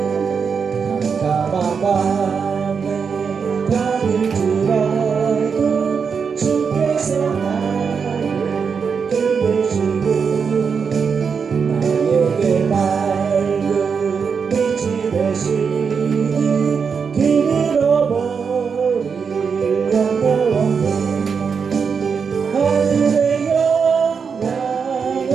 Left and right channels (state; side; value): quieter; left; 6.0 dB